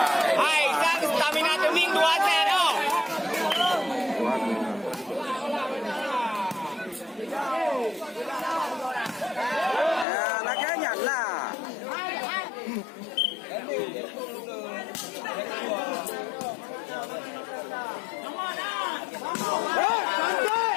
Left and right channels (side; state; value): right; drops out; at 10.1 s